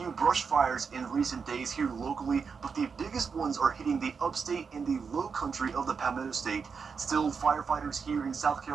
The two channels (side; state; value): left; quieter; 5.7 dB